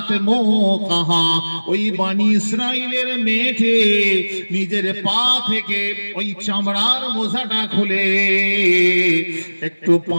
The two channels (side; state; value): both; inverted; correlation -1.00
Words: موقها। ওই বনি ইসরাইলের মেয়েটি নিজের পা থেকে ওই চামড়ার মোজাটা খুলে একটু